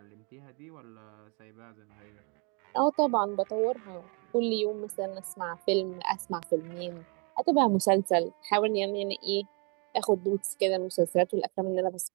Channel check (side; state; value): left; quieter; 34.3 dB